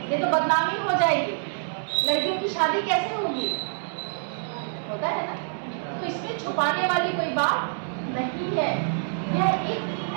ये तो बदनामी हो जाएगी, लड़कियों की शादी कैसे होगी, होता है ना। तो इसमें छुपाने वाली कोई बात नहीं है। यह एक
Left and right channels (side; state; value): left; silent; 59 dB below the other